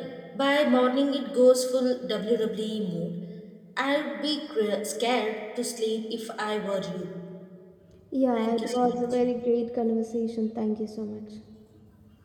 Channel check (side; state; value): both; identical; correlation 1.00